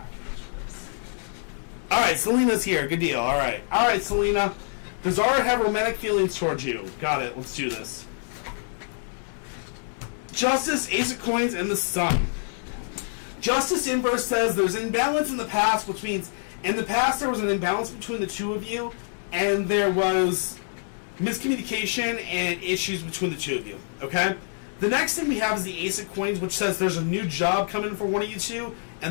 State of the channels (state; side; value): silent; right; 61 dB below the other